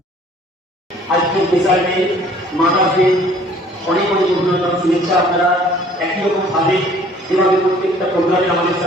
আজকের বিষয়ে মাদারকে অনেক অনেক অভিনন্দন, শুভেচ্ছা। আপনারা একই রকম ভাবে যেভাবে প্রত্যেকটা প্রোগ্রামে আমাদের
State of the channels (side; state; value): both; normal; correlation 0.54